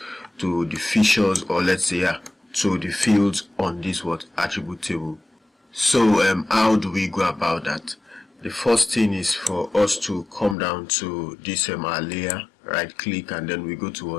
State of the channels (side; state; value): right; drops out; at 10.6 s